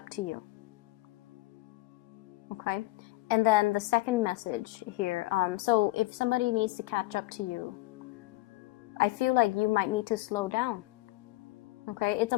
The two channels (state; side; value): quieter; right; 19.1 dB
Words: to you. Okay, and then the second message here. So if somebody needs to catch up to you, I feel like you might need to slow down. Okay, it's